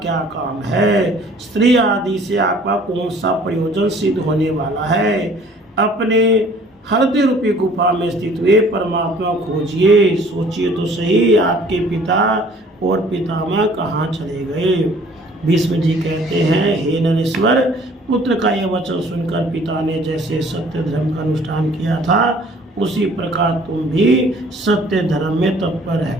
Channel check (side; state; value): both; normal; correlation 0.54